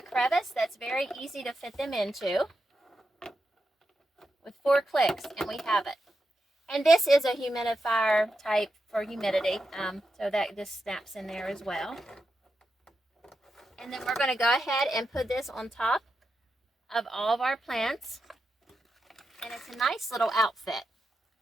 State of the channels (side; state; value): both; normal; correlation 0.87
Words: that's very easy to fit them into with 4 clicks, and we have it. And this is a humidifier type for humidity, so that this snaps in there as well. And then we're going to go ahead and put this on top of all of our plants, and it's a nice little outfit,